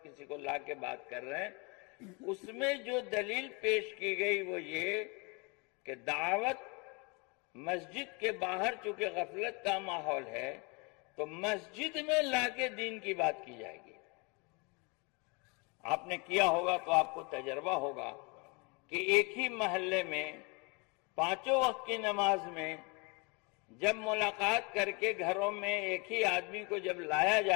کسی کو لا کے بات کر رہے ہیں. اس میں جو دلیل پیش کی گئی وہ یہ کہ دعوت مسجد کے باہر چونکہ غفلت کا ماحول ہے تو مسجد میں لا کے دین کی بات کی جائے گی. آپ نے کیا ہوگا تو آپ کو تجربہ ہوگا کہ ایک ہی محلے میں 5 وقت کی نماز میں جب ملاقات کر کے گھروں میں ایک ہی آدمی کو جب لایا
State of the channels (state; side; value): quieter; right; 30.4 dB